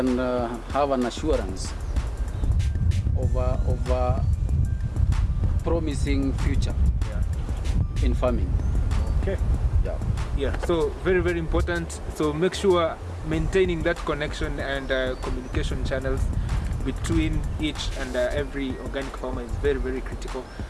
have an assurance of a promising future Yeah. in farming. Okay. Yeah. Yeah. So very, very important. So make sure maintaining that connection and communication channels between each and every organic farmer is very, very critical,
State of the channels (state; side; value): identical; both; correlation 1.00